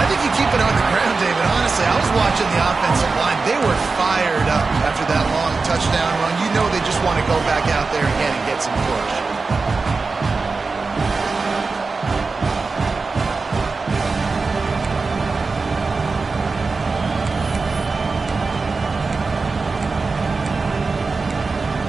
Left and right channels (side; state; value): left; quieter; 4.2 dB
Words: think you keep it on the ground, David. Honestly, I was watching the offensive line. They were fired up after that long touchdown run. You know they just want to go back out there again and get some push.